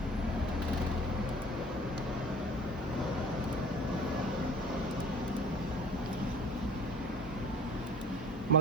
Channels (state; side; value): normal; both; correlation 0.47